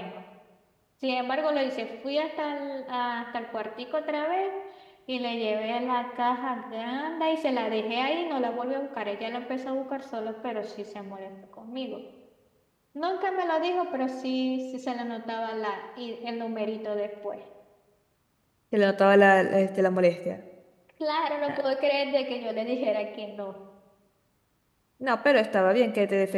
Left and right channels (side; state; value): both; identical; correlation 1.00